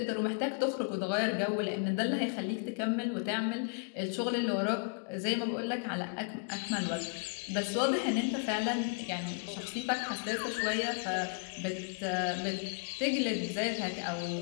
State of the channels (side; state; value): right; quieter; 38.2 dB